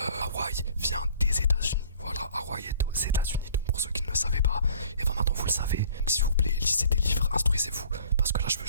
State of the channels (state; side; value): inverted; both; correlation -0.52